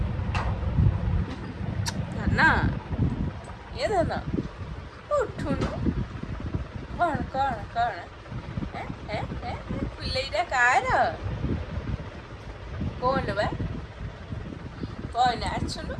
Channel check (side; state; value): both; identical; correlation 1.00